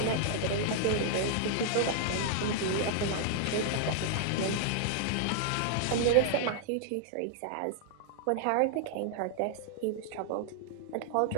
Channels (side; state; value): both; different; correlation -0.01